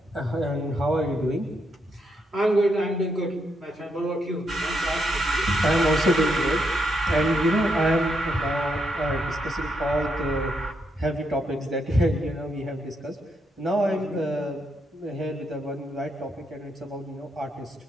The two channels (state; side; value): normal; both; correlation 0.79